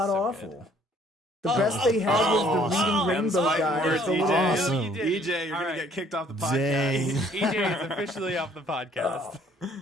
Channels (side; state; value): both; normal; correlation 0.60